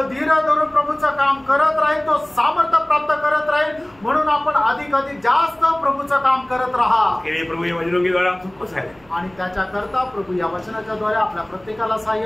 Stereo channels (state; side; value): noise; right; hum, 30 dB below the sound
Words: धीर धरून प्रभूचं काम करत राहील तो सामर्थ्य प्राप्त करत राहील। म्हणून आपण अधिक जास्त प्रभूचं काम करत राहा के लिए प्रभु ये वचनों के द्वारा हम सबको सहायता आणि त्याच्या करता प्रभु या वचनाच्या द्वारे आपल्या प्रत्येकाला